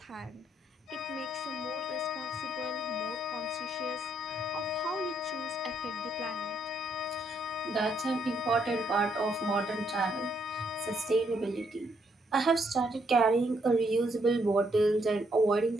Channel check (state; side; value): normal; both; correlation 0.73